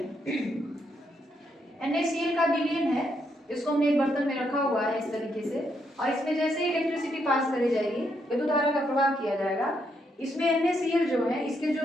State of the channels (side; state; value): both; normal; correlation 0.77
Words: NaCl का विलयन है, इसको हमने एक बर्तन में रखा हुआ है इस तरीके से, और इसमें जैसे ही इलेक्ट्रिसिटी पास करी जाएगी विद्युत धारा का प्रवाह किया जाएगा, इसमें NaCl जो है इसके